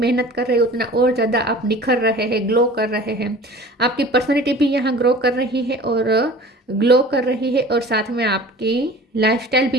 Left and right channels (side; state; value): both; normal; correlation 0.43